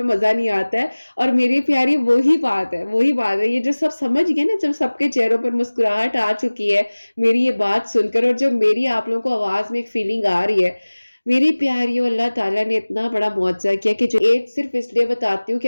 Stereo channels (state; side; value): inverted; both; correlation -1.00